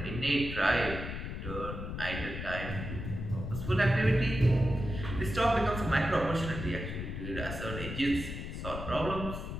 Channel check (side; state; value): left; noise; rumble, 6 dB below the sound